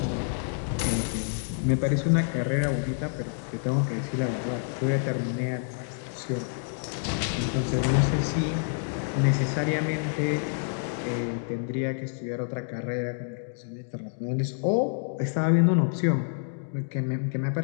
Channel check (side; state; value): right; silent; digital silence